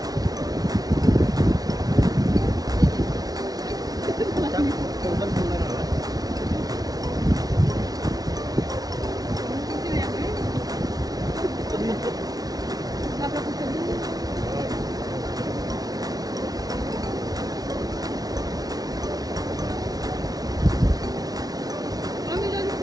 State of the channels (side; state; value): left; late; 0.18 ms